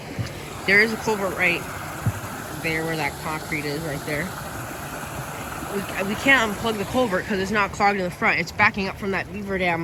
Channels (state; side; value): identical; both; correlation 1.00